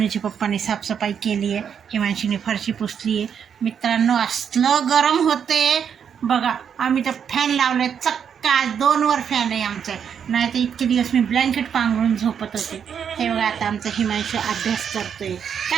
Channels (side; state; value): left; quieter; 7.7 dB